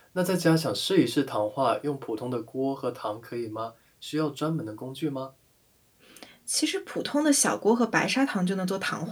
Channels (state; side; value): identical; both; correlation 1.00